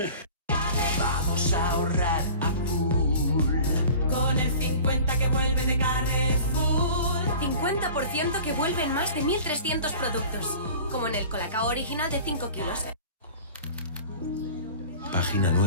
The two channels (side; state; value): both; inverted; correlation -0.41